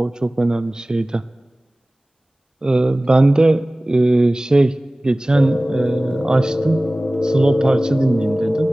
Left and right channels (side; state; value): both; normal; correlation 0.98